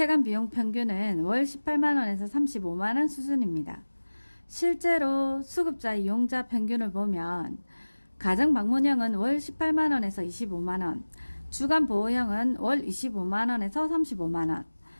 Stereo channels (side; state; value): both; inverted; correlation -1.00